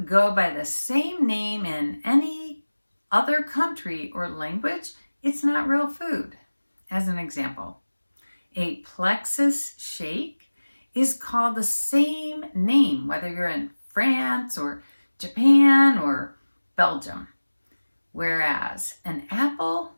go by the same name in any other country or language, it's not real food. As an example, a plexus shake is called the same name, whether you're in France or Japan or Belgium. Whereas an apple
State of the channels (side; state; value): both; inverted; correlation -1.00